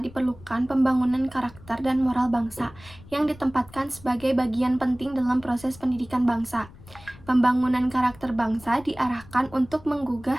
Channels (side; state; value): left; noise; rumble, 21 dB below the sound